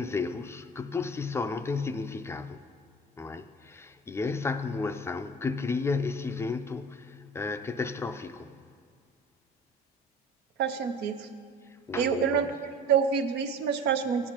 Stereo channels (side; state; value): both; normal; correlation 0.41